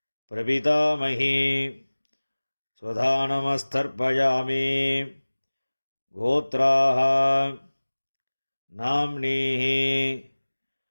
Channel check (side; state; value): both; inverted; correlation -1.00